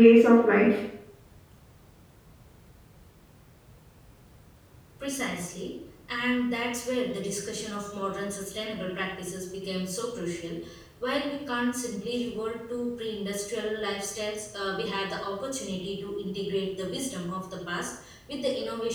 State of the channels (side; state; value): both; identical; correlation 1.00